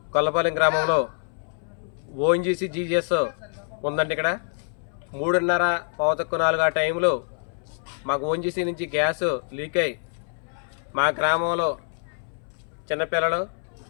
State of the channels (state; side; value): silent; right; 61 dB below the other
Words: గొల్లపాలెం గ్రామంలో ఓఎన్జీసీ జీజీఎస్ ఉందండి. ఇక్కడ 3:30 4 ఆ టైంలో మాకు ఓఎన్జీసీ నుంచి గ్యాస్ లీక్ అయ్యి మా గ్రామంలో చిన్నపిల్లలు